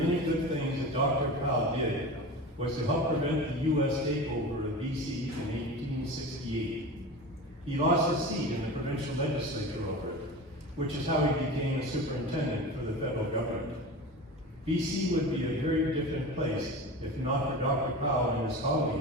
good things that Dr. Powell did was to help prevent the U.S. takeover of BC in 1868. He lost his seat in the provincial legislature over it, which is how he became a superintendent for the federal government. BC would be a very different place if not for Dr. Powell and his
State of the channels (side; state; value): both; normal; correlation 0.31